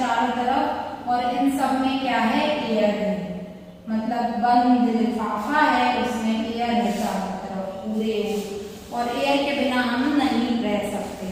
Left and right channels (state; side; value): identical; both; correlation 1.00